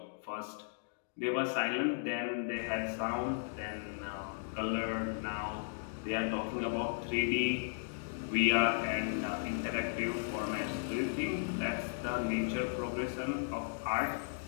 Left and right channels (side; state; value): right; silent; digital silence